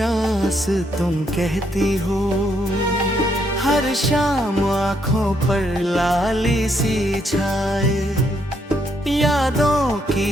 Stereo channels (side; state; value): both; normal; correlation 0.74